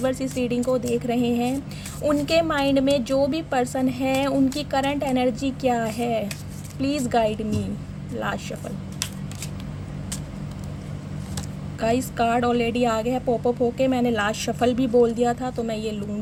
इस रीडिंग को देख रहे हैं, उनके माइंड में जो भी पर्सन है, उनकी करंट एनर्जी क्या है, please guide me. Last shuffle. Guys, card already आ गया है पॉपअप होके। मैंने लास्ट शफल भी बोल दिया था, तो मैं ये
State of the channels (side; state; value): both; identical; correlation 1.00